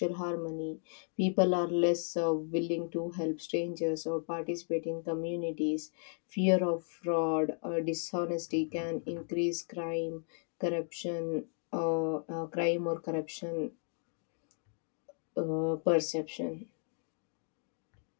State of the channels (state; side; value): silent; right; 55 dB below the other